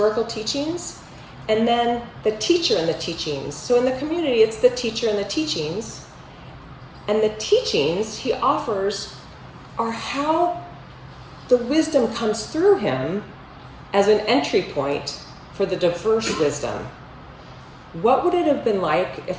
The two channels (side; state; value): both; identical; correlation 1.00